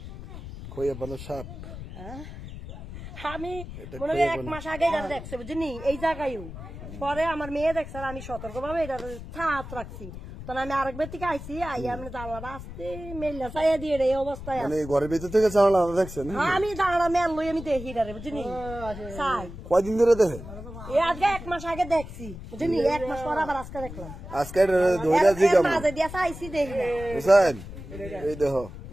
খইয়া বানো সাপ। আমি মনে হয় 1 মাস আগে এটা দেখছে বুঝলি এই জায়গায়। পরে আমার মেয়ে দেখছে আর আমি সতর্ক ভাবে এটা ছাত রাখছি। তখন আমি আরেকবার থেকে আইসি আইয়া আমি জানলাটা আসতে মেলা চাইয়া দিয়ে এই অবস্থায় ঘরের ভিতর থেকে জানলা দেখছেন? আমি জানলা মেল লই আমি দেখি রে বুঝলি চাই। কয়দিন ধরে দেখেন? এই আজকে 1 মাস আগে দেখছি বুঝলি 1 মাস পর আবার আজকে দেখলাম। আজকে ধইরা জিগাম মাঝে দিয়া চাইছি দেখি না বুঝছেন? এই দেখো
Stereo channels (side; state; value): left; noise; rumble, 12 dB below the sound